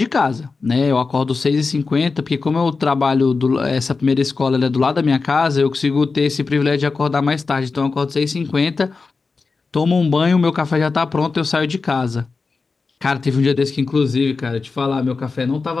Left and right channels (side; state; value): right; quieter; 4.3 dB